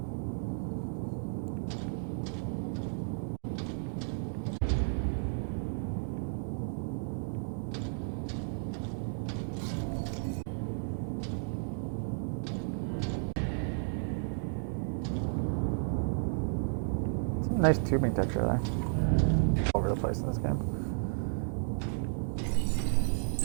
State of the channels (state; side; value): silent; left; digital silence